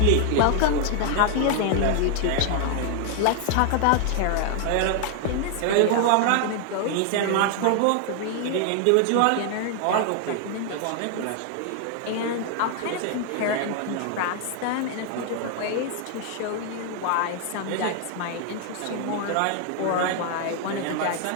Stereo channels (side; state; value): both; different; correlation 0.00